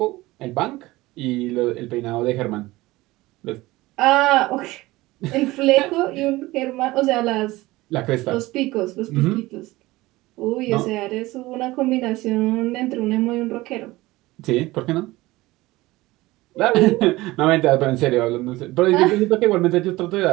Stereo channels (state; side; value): quieter; left; 19.3 dB